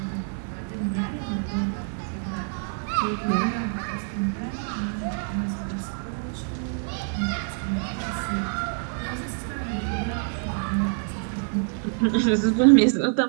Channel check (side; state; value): left; silent; 57 dB below the other